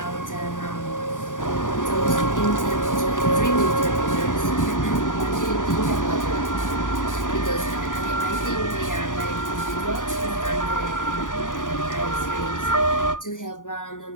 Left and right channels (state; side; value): late; right; 0.88 ms